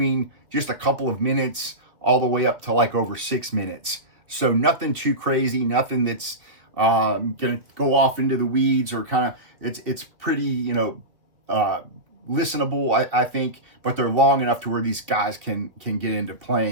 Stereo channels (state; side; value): late; left; 2.5 ms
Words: just a couple of minutes all the way up to like over 6 minutes. So nothing too crazy, nothing that's going to go off into the weeds or kind of, it's pretty, you know, listenable, I think, but they're long enough to where these guys can get into